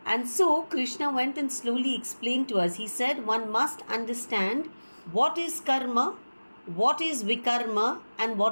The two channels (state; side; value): inverted; both; correlation -1.00